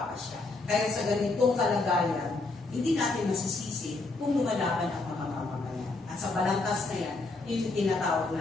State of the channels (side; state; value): right; quieter; 3.4 dB